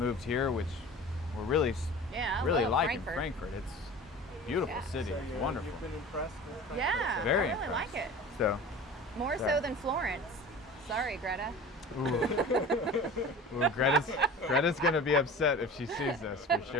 here, which we're really Yeah, I really love liking Frankfurt. It's a beautiful Yeah. city. So It's wonderful. You've been impressed with Frankfurt? Yeah, Very I really impressed. like it. So, More Yeah. so than Florence. Sorry, Greta. ooh, Greta's gonna be upset if she sees this for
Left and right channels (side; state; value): both; normal; correlation 0.38